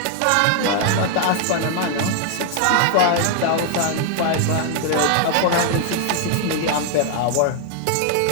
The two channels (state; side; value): different; both; correlation 0.00